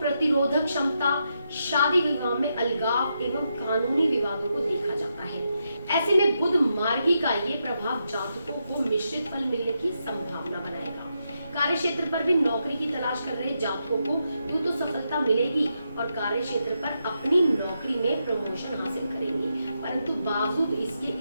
क्षमता, शादी विवाह में अलगाव एवं कानूनी विवादों को देखा जाता है। ऐसे में बुध मार्गी का ये प्रभाव जातकों को मिश्रित फल मिलने की संभावना बनाएगा। कार्य क्षेत्र पर भी नौकरी की तलाश कर रहे जातकों को यूं तो सफलता मिलेगी और कार्य क्षेत्र पर अपनी नौकरी में प्रमोशन हासिल करेंगे, परंतु बावजूद इसके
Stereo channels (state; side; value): inverted; both; correlation -0.83